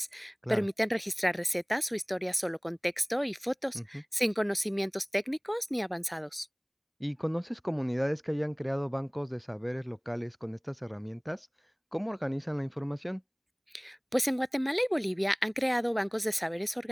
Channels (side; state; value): both; identical; correlation 1.00